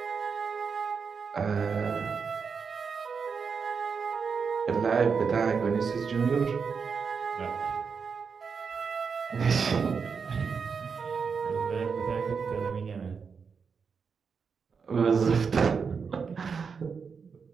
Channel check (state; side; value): quieter; left; 5.7 dB